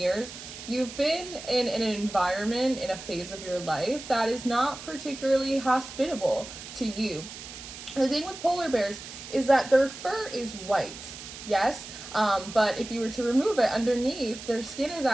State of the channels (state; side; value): noise; right; hiss, 12 dB below the sound